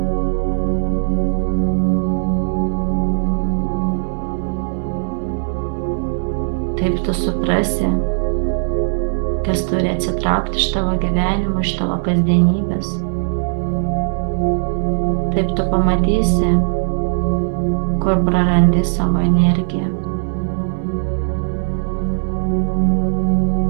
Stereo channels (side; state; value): left; silent; digital silence